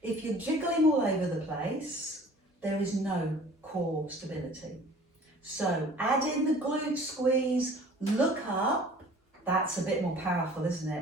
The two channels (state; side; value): normal; both; correlation 0.48